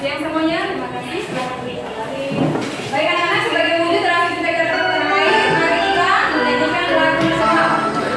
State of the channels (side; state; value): both; identical; correlation 1.00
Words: semuanya. Terima kasih sudah kembali. Baik anak-anak, sebagai wujud terakhir kita tanah air, mari kita menyanyikan lagu bersama.